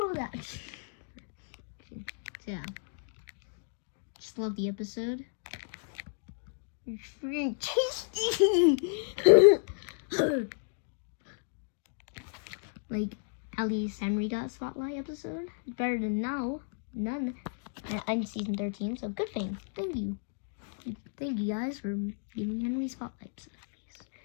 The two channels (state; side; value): silent; right; digital silence